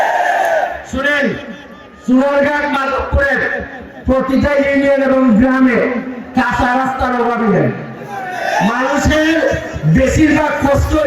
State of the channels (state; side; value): identical; both; correlation 1.00